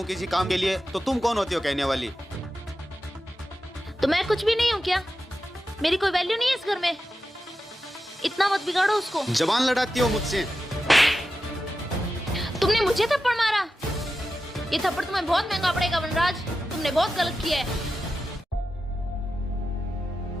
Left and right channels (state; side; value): normal; both; correlation 0.91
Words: किसी काम के लिए तो तुम कौन होती हो कहने वाली? तो मैं कुछ भी नहीं हूँ क्या? मेरी कोई वैल्यू नहीं है इस घर में? इतना मत बिगाड़ो उसको। जबान लड़ाती हो मुझसे। तुमने मुझे थप्पड़ मारा। ये थप्पड़ तुम्हें बहुत महंगा पड़ेगा वनराज, तुमने बहुत गलत किया है।